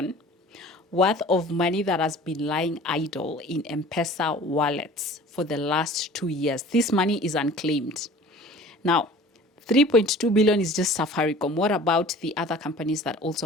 worth of money that has been lying idle in M-Pesa wallets for the last 2 years. This money is unclaimed. Now, 3.2 billion is just Safaricom. What about the other companies that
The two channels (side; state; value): both; normal; correlation 0.45